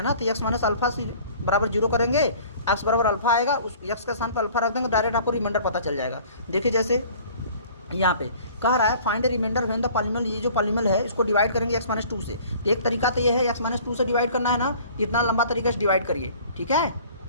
ना तो एक्स माइनस अल्फा से बराबर 0 करेंगे, एक्स बराबर अल्फा आएगा, उस एक्स के स्थान पर अल्फा रख देंगे, डायरेक्ट आपको रिमाइंडर पता चल जाएगा। देखिए जैसे यहाँ पे कह रहा है find remainder when the polynomial, ये जो पॉलीनोमियल है इसको डिवाइड करेंगे x-2 से। तो एक तरीका तो ये है x-2 से डिवाइड करना है ना, इतना लंबा तरीके से डिवाइड करिए। ठीक है,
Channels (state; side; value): inverted; both; correlation -0.50